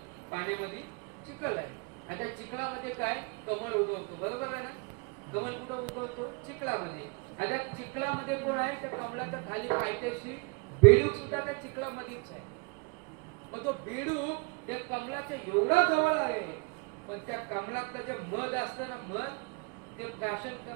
पाण्यामध्ये चिखल आहे आणि त्या चिखलामध्ये काय कमळ उगवतो बरोबर आहे ना. कमळ कुठं उगवतो चिखलामध्ये. आणि त्या चिखलामध्ये कोण आहे त्या कमळाच्या खाली पायथ्याशी बेडूक सुद्धा त्या चिखलामध्येच आहे. मग तो बेडूक त्या कमळाच्या एवढा जवळ आहे पण त्या कमळातलं जे मध असतं ना मध ते प्राशन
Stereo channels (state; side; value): quieter; left; 32.2 dB